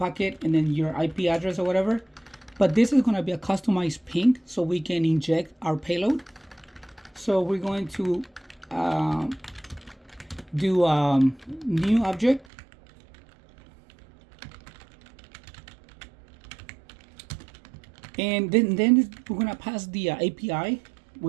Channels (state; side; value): drops out; left; at 12.5 s